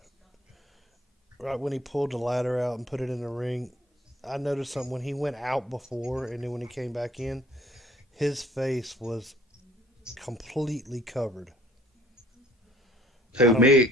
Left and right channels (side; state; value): both; normal; correlation 0.56